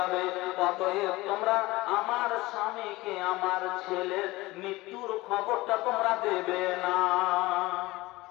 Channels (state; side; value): quieter; right; 20.0 dB